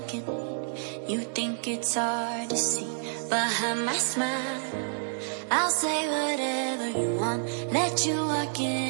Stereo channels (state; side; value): silent; left; digital silence